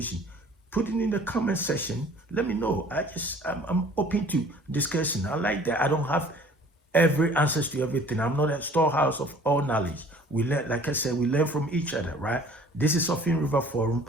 Put it in the comment section. Let me know. I'm open to discussion. I like that. I don't have every answers to everything. I'm not a storehouse of all knowledge. We learn, like I said, we learn from each other, right? This is Offin River Forum.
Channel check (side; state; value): both; normal; correlation 0.50